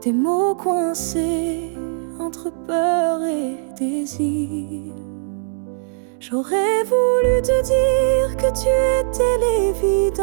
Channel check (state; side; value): silent; left; 66 dB below the other